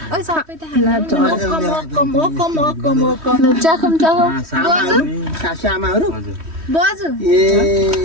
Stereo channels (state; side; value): late; left; 3.1 ms